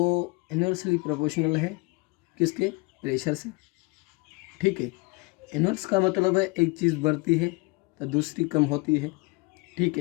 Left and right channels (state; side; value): quieter; right; 26.2 dB